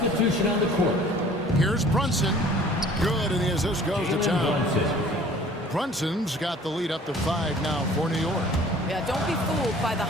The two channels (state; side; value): normal; both; correlation 0.50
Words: on the court. Here's Brunson. Good, and the assist goes to Towns. Brunson's got the lead up to 5 now for New York. Yeah, don't be fooled by the